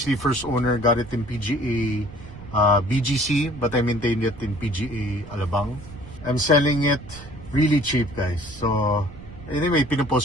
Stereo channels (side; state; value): right; noise; rumble, 17 dB below the sound